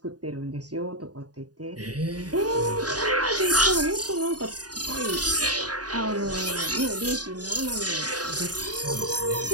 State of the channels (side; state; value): left; late; 0.68 ms